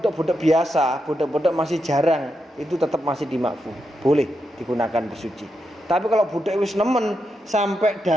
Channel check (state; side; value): normal; both; correlation 0.84